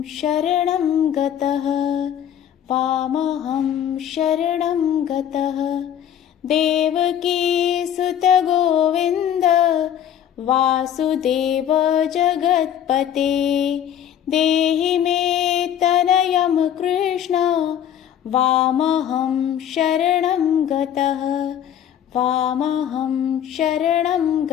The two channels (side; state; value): right; quieter; 9.9 dB